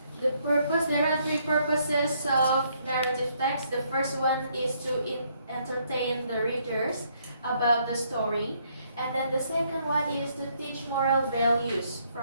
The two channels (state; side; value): inverted; both; correlation -0.70